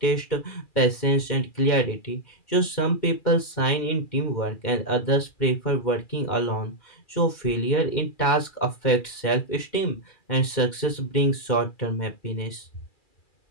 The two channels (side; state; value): right; late; 2.1 ms